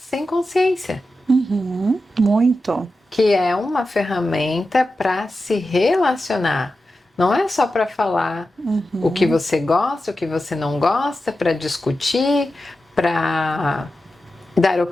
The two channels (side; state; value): both; normal; correlation 0.92